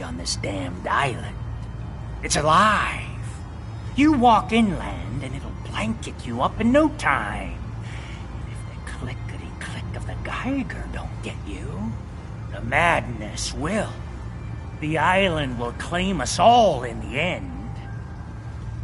on this damned island. It's alive. You walk inland and it'll blanket you up in no time. And if the clickety-click of the Geiger don't get you, the madness will. The island will claim us all in the end.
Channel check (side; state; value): both; identical; correlation 1.00